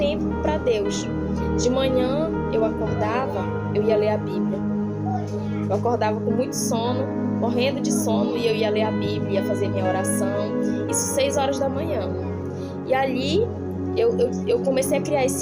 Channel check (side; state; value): both; identical; correlation 1.00